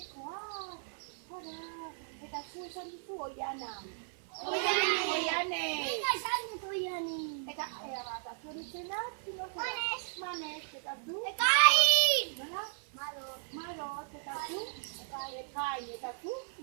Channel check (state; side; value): silent; left; 54 dB below the other